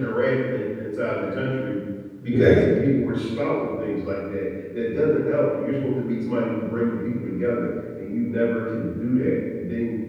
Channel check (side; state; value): both; identical; correlation 1.00